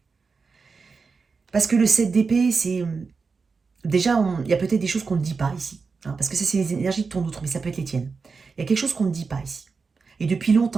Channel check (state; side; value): quieter; left; 4.8 dB